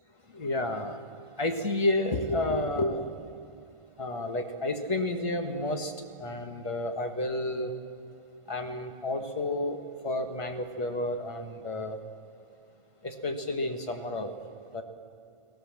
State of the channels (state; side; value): late; left; 1.5 ms